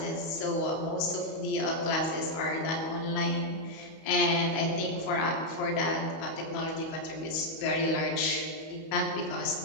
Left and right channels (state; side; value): late; right; 31 ms